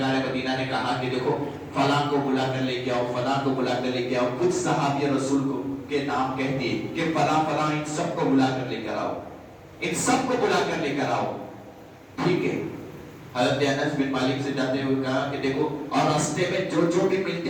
مدینہ نے کہا کہ دیکھو فلاں کو بلا کر لے کے آؤ، فلاں کو بلا کر لے کے آؤ. کچھ صحابی رسول کو کے نام کہتے ہیں کہ فلاں فلاں ان سب کو بلا کر لے کر آؤ، ان سب کو بلا کر لے کر آؤ. ٹھیک ہے. حضرت انس بن مالک سے جاتے ہوئے کہا کہ دیکھو اور راستے میں جو جو بھی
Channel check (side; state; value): both; identical; correlation 1.00